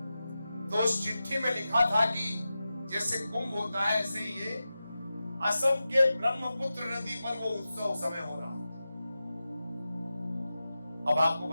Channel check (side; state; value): both; inverted; correlation -0.93